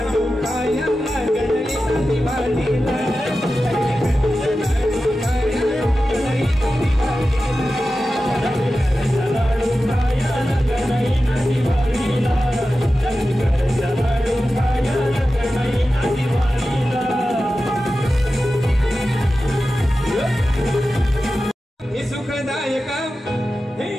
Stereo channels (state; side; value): normal; both; correlation 0.93